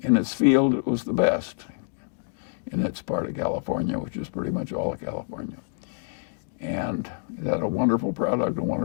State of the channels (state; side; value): silent; right; digital silence